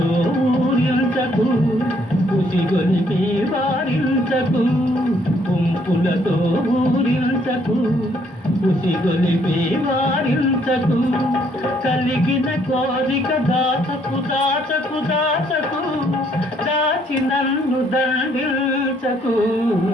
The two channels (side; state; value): both; normal; correlation 0.67